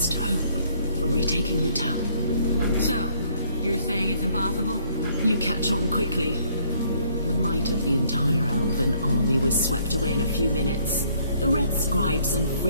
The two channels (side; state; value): both; inverted; correlation -0.65